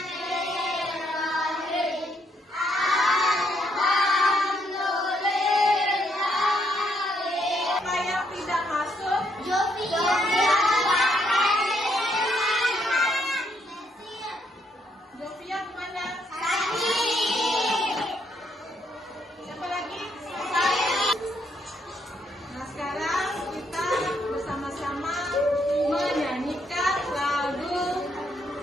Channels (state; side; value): normal; both; correlation 0.73